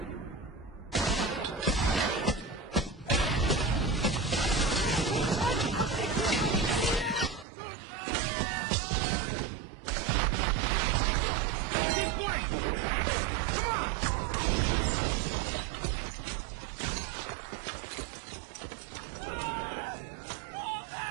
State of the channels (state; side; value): drops out; left; at 7.5 s